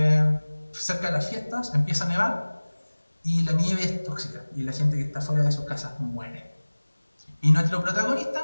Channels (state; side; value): inverted; both; correlation -1.00